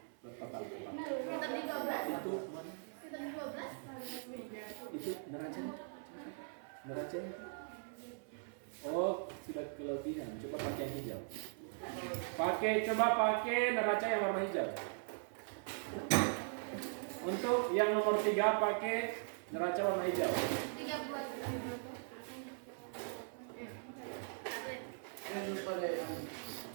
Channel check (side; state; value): left; silent; 51 dB below the other